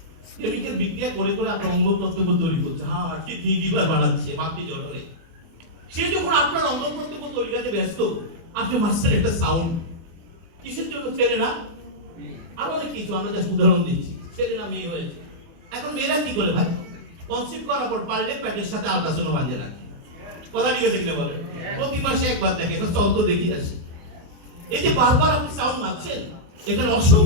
কেমিক্যাল বিক্রিয়া করে করে আপনার অঙ্গ প্রত্যঙ্গ তৈরি করছে, হার্ট কিডনি লিভার বানাচ্ছে মাতৃ জঠরে। সে যখন আপনার অঙ্গ প্রত্যঙ্গ তৈরি করতে ব্যস্ত, আপনি মাসের একটা সাউন্ড কিসের জন্য? ছেলে না, আর অনেক কিছু, আমরা জাস্ট উদাহরণ দিচ্ছি। ছেলে না মেয়ে হয়েছে, এখন মেয়েরা কি করে ভাই? কনসিভ করার পর পারলে পেটের সাথে আল্ট্রাসাউন্ড বাঁধিয়ে রাখে। কথা ঠিক আছে কিনা বলেন? প্রতি মাসে একবার দেখে, চল তো দেখি আসি। এই যে বারবার আপনি সাউন্ড মারছেন, এখানে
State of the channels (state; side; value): late; left; 24 ms